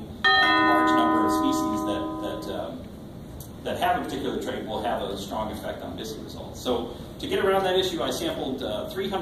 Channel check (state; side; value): identical; both; correlation 1.00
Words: a large number of species that have a particular trait, will have a strong effect on BISI results. So to get around that issue, I sampled